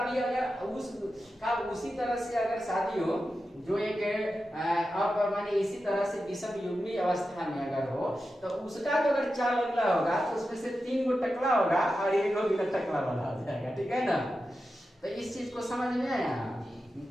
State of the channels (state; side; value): normal; both; correlation 0.91